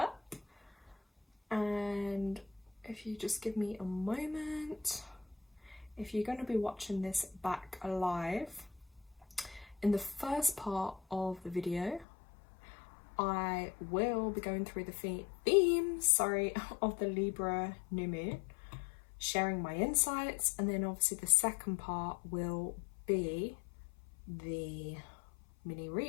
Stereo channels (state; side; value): drops out; right; at 12.1 s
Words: and if you just give me a moment, if you're going to be watching this back live, in the first part of the video I will be going through the themes of the Libra new moon, sharing my insights, and then obviously the second part will be the mini